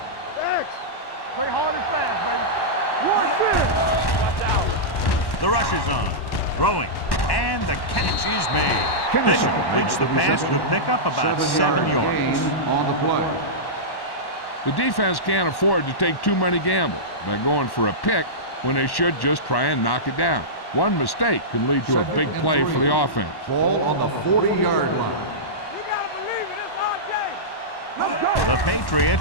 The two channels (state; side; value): late; right; 1.1 ms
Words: X. Play hard and fast, baby. 1 minute. The rush is on. Throwing. And the catch is made. Bishop completes the pass with pickup about 7 yards. Gain on the play. The defense can't afford to take too many gambles by going for a pick when they should just try and knock it down. One mistake can lead to a big play for the offense. Ball on the 40-yard line. You gotta believe it. It's our game. The